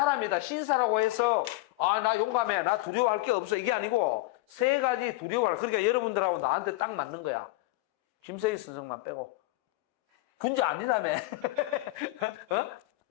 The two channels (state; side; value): quieter; right; 19.7 dB